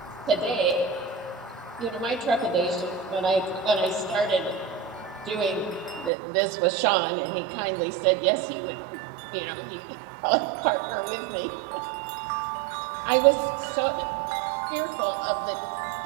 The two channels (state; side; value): drops out; left; at 6.1 s